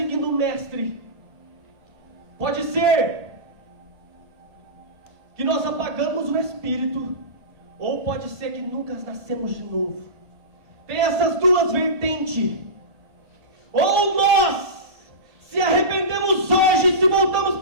o Mestre, pode ser que nós apagamos o Espírito, ou pode ser que nunca nascemos de novo. Tem essas duas vertentes. Ou nós se arrependemos hoje e se voltamos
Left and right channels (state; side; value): late; left; 1.8 ms